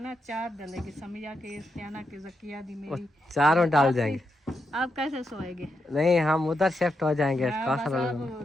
चार डलेगी, समिया के इस्तियाना के जकिया दी मेरी चारों डाल जाएंगे। आप कैसे सोएंगे? नहीं हम उधर शिफ्ट हो जाएंगे। हाँ, बस आप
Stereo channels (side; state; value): both; normal; correlation 0.84